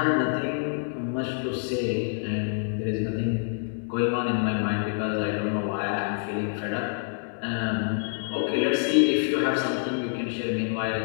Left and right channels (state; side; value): silent; right; 60 dB below the other